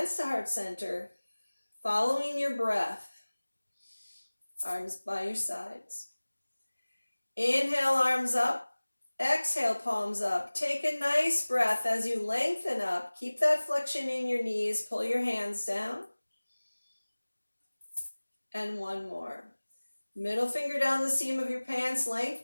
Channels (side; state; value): both; inverted; correlation -1.00